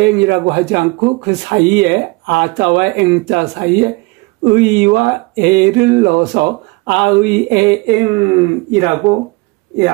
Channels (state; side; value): quieter; left; 25.4 dB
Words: 하지 않고 그 사이에 아자와 eng자 사이에 의와 에를 넣어서 아의에eng이라고